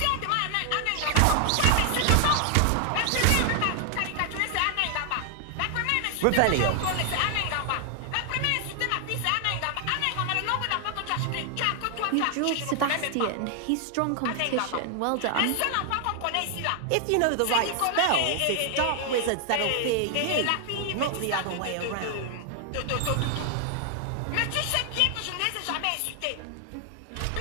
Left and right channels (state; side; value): different; both; correlation 0.00